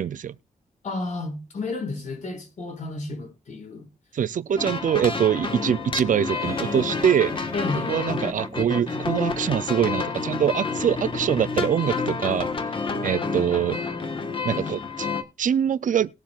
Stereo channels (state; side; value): quieter; left; 4.3 dB